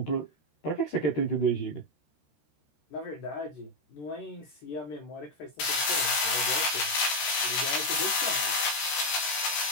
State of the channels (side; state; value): right; late; 14 ms